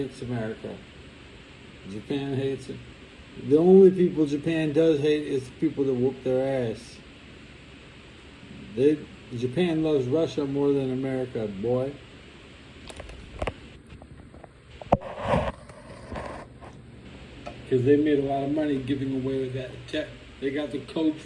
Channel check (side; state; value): both; identical; correlation 1.00